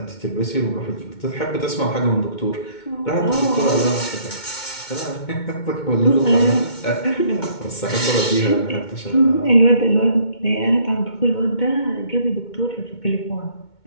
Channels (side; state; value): right; late; 2.2 ms